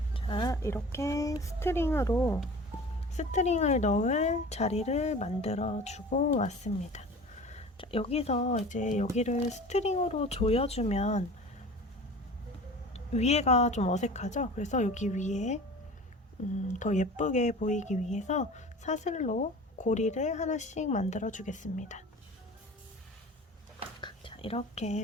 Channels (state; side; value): normal; both; correlation 0.39